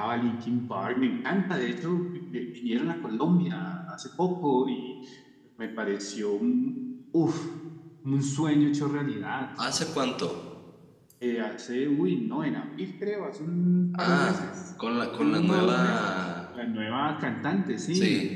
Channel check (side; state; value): both; identical; correlation 1.00